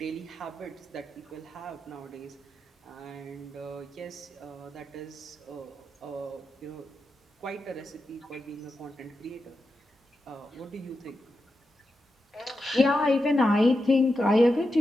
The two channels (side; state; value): both; normal; correlation 0.89